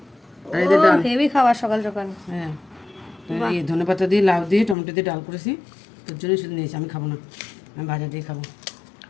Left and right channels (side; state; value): right; drops out; at 4.8 s